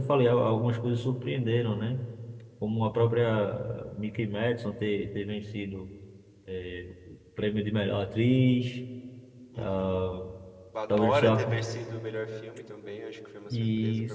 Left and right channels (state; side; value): identical; both; correlation 1.00